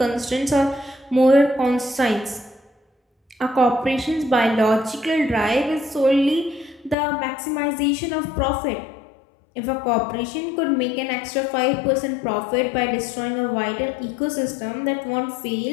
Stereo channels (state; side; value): drops out; right; at 7.0 s